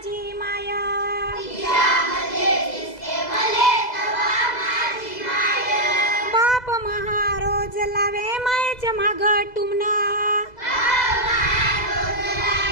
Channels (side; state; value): right; late; 2.0 ms